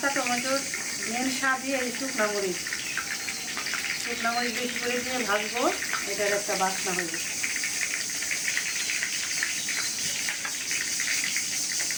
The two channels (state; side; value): identical; both; correlation 1.00